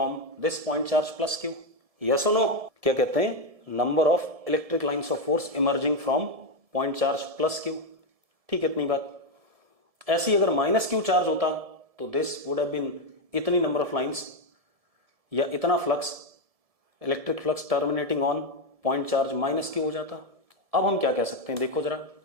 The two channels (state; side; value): late; left; 1.7 ms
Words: this point charge plus Q, yes और नो? क्या कहते हैं, number of electric lines of force emerging from point charge plus Q. ठीक है, इतनी बात। ऐसी अगर माइनस क्यू चार्ज होता तो दिस वुड हैव बीन इतनी नंबर ऑफ लाइंस या इतना flux, electric flux terminating on point charge minus Q हो जाता। अब हम क्या कह सकते हैं, देखो जरा,